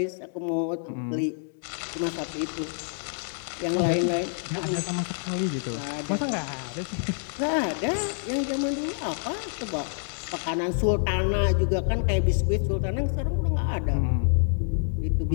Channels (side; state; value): right; silent; digital silence